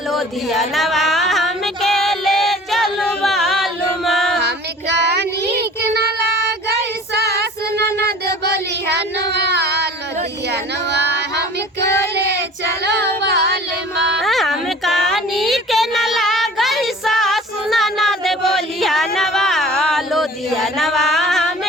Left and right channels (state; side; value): normal; both; correlation 0.45